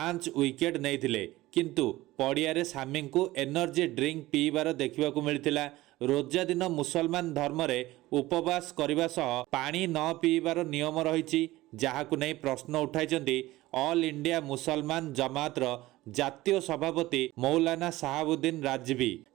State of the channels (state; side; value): quieter; left; 17.8 dB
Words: ୱିକେଟ୍ ନେଇଥିଲେ। କିନ୍ତୁ ପଡ଼ିଆରେ ସାମିଙ୍କୁ ଏନର୍ଜି ଡ୍ରିଙ୍କ ପିଇବାର ଦେଖିବାକୁ ମିଳିଥିଲା। ରୋଜା ଦିନ ମୁସଲମାନ ଧର୍ମରେ ଉପବାସ କରିବା ସହ ପାଣି ନ ପିଇବାର ନିୟମ ରହିଛି, ଯାହାକୁ ନେଇ ପ୍ରଶ୍ନ ଉଠାଇଛନ୍ତି ଅଲ୍ ଇଣ୍ଡିଆ ମୁସଲମାନ ଜମାତର ଜାତୀୟ ସଭାପତି ମୌଲାନା ସାହାବୁଦ୍ଦିନ ରାଜଭି।